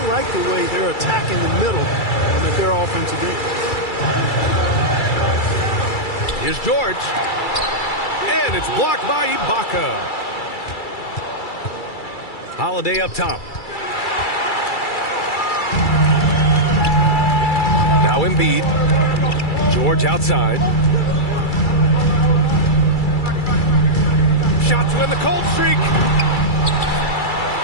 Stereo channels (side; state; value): right; late; 2.3 ms